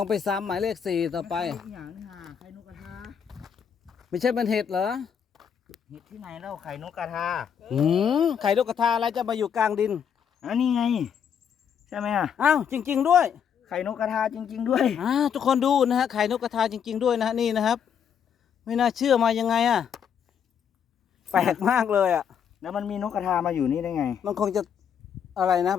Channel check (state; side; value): quieter; right; 7.8 dB